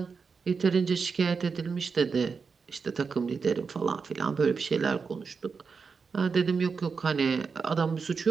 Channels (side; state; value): left; quieter; 5.3 dB